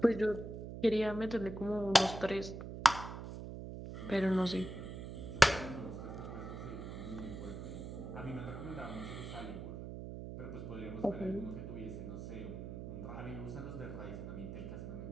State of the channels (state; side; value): noise; right; hum, 8 dB below the sound